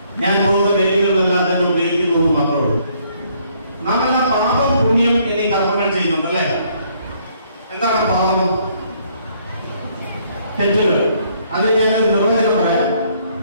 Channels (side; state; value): both; inverted; correlation -0.66